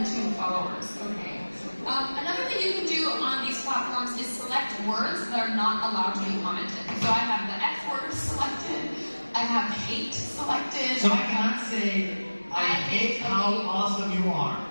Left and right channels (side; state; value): both; inverted; correlation -1.00